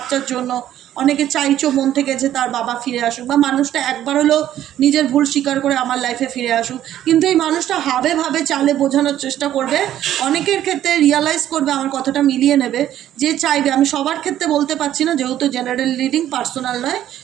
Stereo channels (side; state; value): left; quieter; 12.0 dB